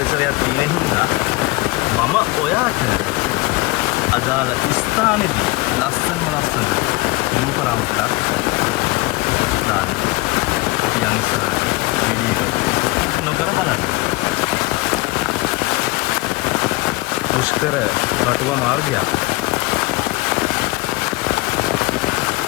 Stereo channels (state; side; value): quieter; right; 22.3 dB